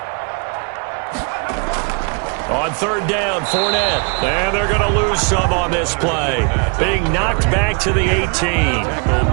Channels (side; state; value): left; quieter; 36.8 dB